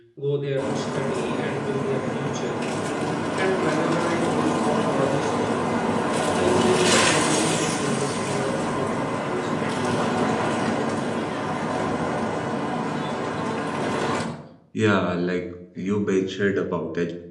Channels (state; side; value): identical; both; correlation 1.00